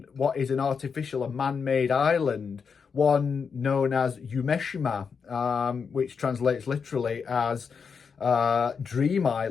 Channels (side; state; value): right; quieter; 6.0 dB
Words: what is an artificial and man-made island, one known as Umeshima, which translates literally as Dream